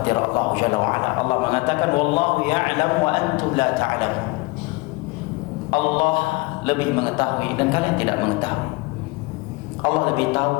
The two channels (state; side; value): quieter; right; 24.7 dB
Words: Allah Jalla wa'ala. Allah mengatakan wallahu ya'lam wa antum la ta'lamun. Allah lebih mengetahui dan kalian tidak mengetahui. Allah lebih tahu